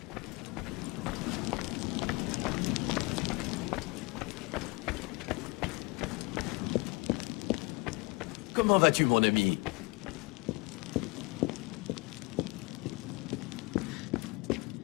Comment vas-tu, mon ami?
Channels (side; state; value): right; quieter; 26.9 dB